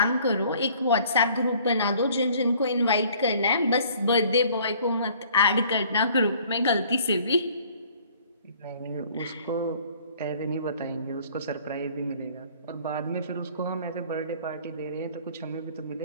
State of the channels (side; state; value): both; inverted; correlation -0.55